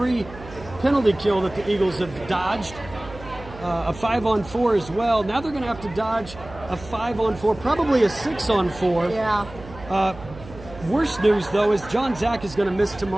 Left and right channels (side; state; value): right; noise; hum, 17 dB below the sound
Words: penalty kill that the Eagles have dodged. A 5-on-4 as well. Now they're going to have to dodge a 5-on-4, probably a 6-on-4. Yeah. Worst news, though, is John Zach is going to miss